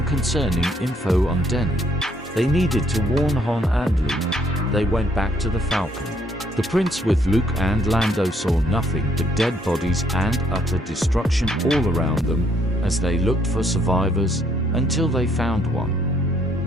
concerning info on Denon. They needed to warn Han and Luke. They went back to the Falcon. The Prince with Luke and Lando saw nothing but dead bodies and utter destruction all around them as they looked for survivors until they found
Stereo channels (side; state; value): both; normal; correlation 0.69